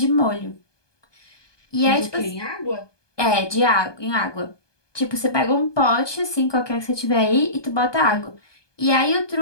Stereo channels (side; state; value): right; late; 1.2 ms